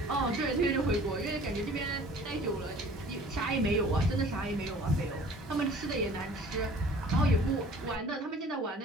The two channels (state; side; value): normal; both; correlation 0.49